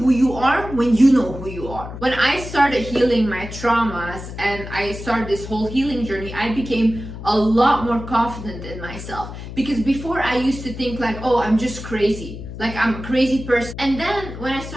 you are when you know who you are. When I started healing my traumas and I started this whole healing journey, I became a lot more confident in myself. Because before I used to think like, oh, I'm just crazy. Like I'm a crazy person. And then when I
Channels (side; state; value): left; noise; hum, 10 dB below the sound